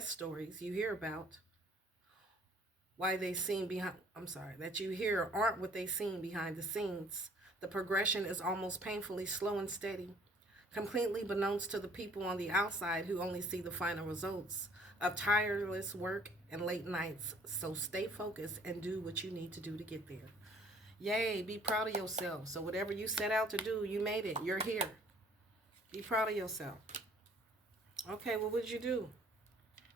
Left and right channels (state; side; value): normal; both; correlation 0.57